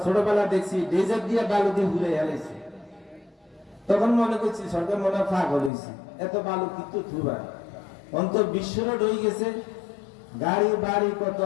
ছোটবেলা দেখছি ডেজার্ট দিয়ে বালু দিয়ে ঘুরে এলাইছি। তখন মনে করছি সরকার মনে পাগল হয়েছে, এত বালু কিন্তু থুবার অন্তর বিশ্ব রোড হয়ে গেছে, গাড়ি বাড়ি কত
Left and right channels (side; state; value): right; drops out; at 5.7 s